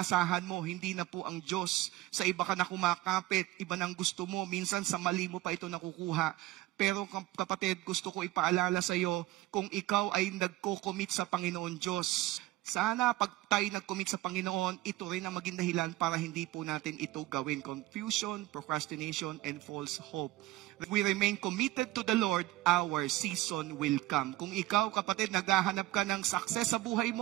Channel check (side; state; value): left; quieter; 17.6 dB